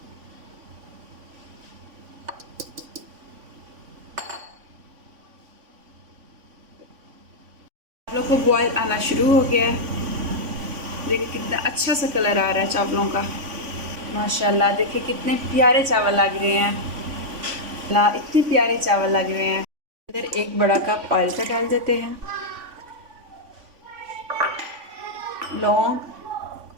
चावलों को बॉयल आना शुरू हो गया है। देखिए कितना अच्छा सा कलर आ रहा है चावलों का, माशाल्लाह। देखिए कितने प्यारे चावल लग रहे हैं, इतने प्यारे चावल लग रहे हैं। अंदर 1 बड़ा कप ऑयल का डाल देते हैं। लौंग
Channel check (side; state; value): left; late; 3.5 ms